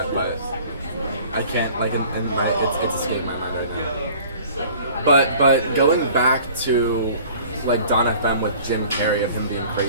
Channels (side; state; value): both; inverted; correlation -0.49